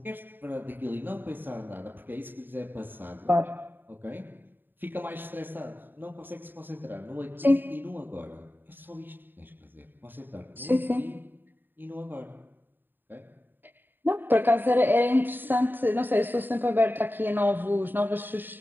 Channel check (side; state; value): left; late; 0.093 ms